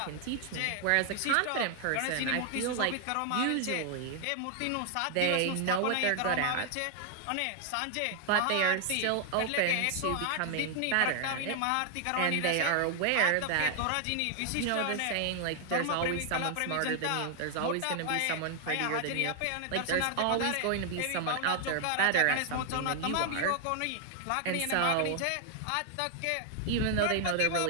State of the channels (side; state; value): both; different; correlation 0.00